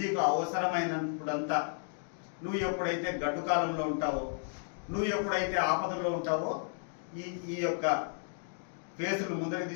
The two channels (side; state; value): right; silent; digital silence